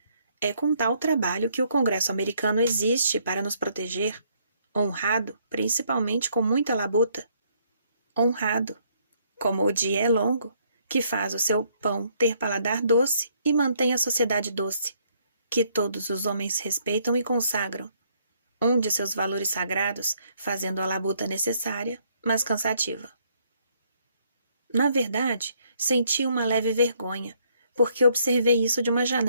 é com tal trabalho que o Congresso americano existe para nos proteger, honrado, principalmente com muita labuta. Honrado, como o dia é longo, que faz o seu pão ter paladar doce e mantém a sociedade doce, que todos os homens respeitam e consagram, um de seus valores sagrados, fazendo a labuta necessária, mas cansativa. Na verdade, senti uma leve vergonha, porque observei isso de uma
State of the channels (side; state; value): both; inverted; correlation -0.68